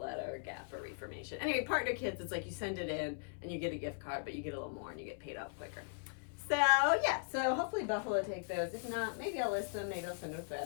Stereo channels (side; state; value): right; silent; 52 dB below the other